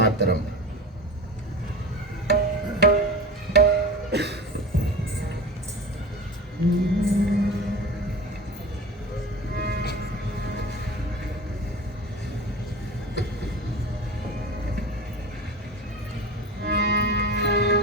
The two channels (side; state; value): both; normal; correlation 0.32